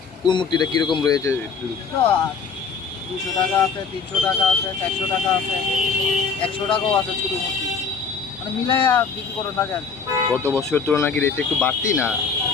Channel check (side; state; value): right; quieter; 5.5 dB